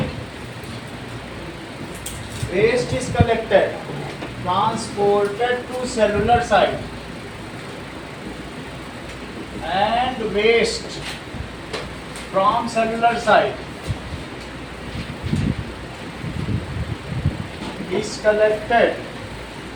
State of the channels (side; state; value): both; identical; correlation 1.00